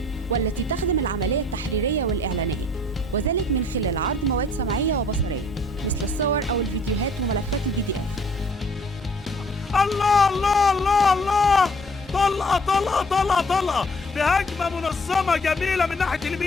والتي تخدم العملية التحريرية والإعلانية، وذلك من خلال عرض مواد سمعية وبصرية مثل الصور أو الفيديوهات وملفات الفيديو. الله الله الله الله، طلقة طلقة طلقة طلقة بهجمة منظمة جميلة من ناحية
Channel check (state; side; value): normal; both; correlation 0.57